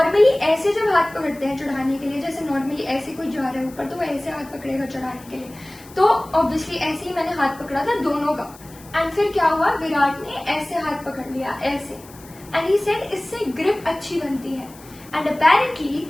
ऐसे जब हाथ पकड़ते हैं चढ़ाने के लिए, जैसे नॉर्मली ऐसे कोई जा रहा है ऊपर तो वो ऐसे हाथ पकड़ेगा चढ़ाने के लिए, तो ऑब्वियसली ऐसे ही मैंने हाथ पकड़ा था दोनों का. एंड फिर क्या हुआ, विराट ने ऐसे हाथ पकड़ लिया ऐसे, एंड ही सेड इससे ग्रिप अच्छी बनती है. एंड अपेरेंटली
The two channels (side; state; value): left; noise; hiss, 22 dB below the sound